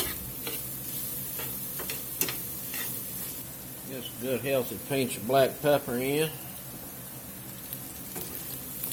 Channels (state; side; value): identical; both; correlation 1.00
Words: Just a good healthy pinch of black pepper in.